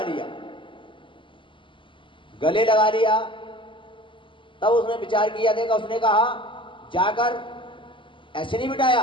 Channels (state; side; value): late; right; 0.24 ms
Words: लिया, गले लगा लिया। तब उसने विचार किया, देखा, उसने कहा जाकर ऐसे नहीं